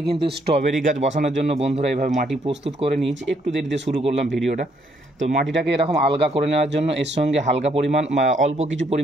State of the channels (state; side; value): normal; both; correlation 0.70